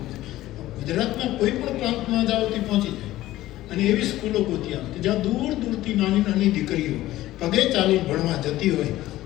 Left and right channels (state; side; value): quieter; right; 15.6 dB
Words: છે. ગુજરાતના કોઈ પણ પ્રાંતમાં જાઓ તે પહોંચી જાય અને એવી સ્કૂલો ગોતી આવે જ્યાં દૂર દૂરથી નાની નાની દીકરીઓ પગે ચાલીને ભણવા જતી હોય